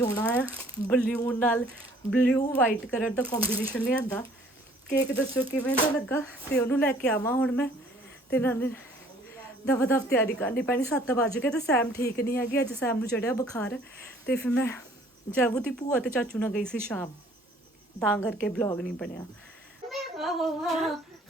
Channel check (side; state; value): both; normal; correlation 0.57